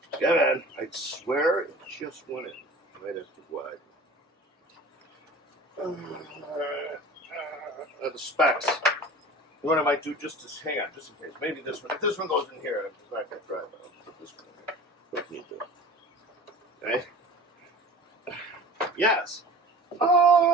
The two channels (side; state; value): both; normal; correlation 0.40